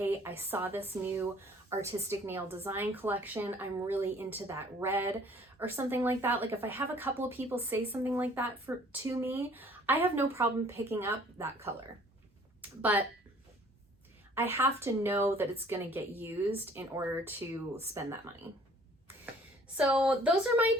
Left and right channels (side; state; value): both; normal; correlation 0.55